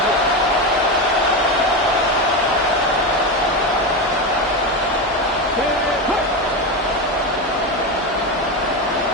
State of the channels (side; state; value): both; normal; correlation 0.16